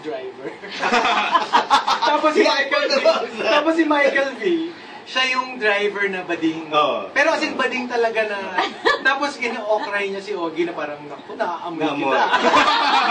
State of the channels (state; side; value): identical; both; correlation 1.00